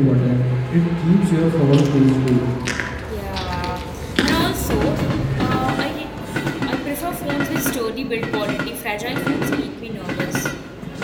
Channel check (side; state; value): both; identical; correlation 1.00